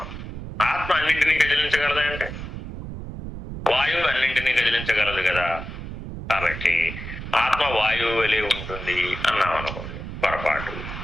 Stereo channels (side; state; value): right; noise; rumble, 9 dB below the sound